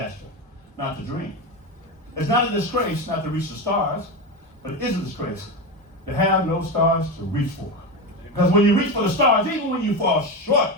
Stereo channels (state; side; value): normal; both; correlation 0.18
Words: not to dream. It's not a disgrace not to reach the stars, but it is a disgrace to have no stars to reach for. Because when you reach for the stars, even when you fall short,